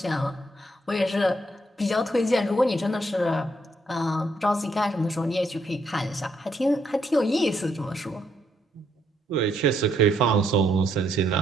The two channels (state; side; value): normal; both; correlation 0.74